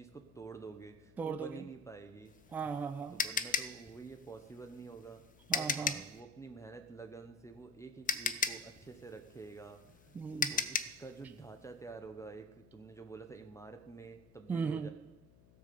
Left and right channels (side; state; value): left; noise; hum, 24 dB below the sound